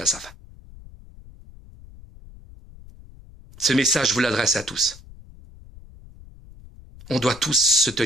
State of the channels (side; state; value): left; noise; rumble, 20 dB below the sound